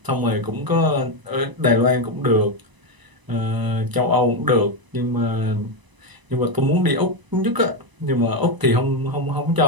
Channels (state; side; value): late; left; 1.0 ms